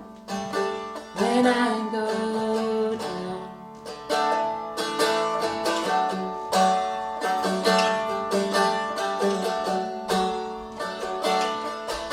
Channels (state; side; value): identical; both; correlation 1.00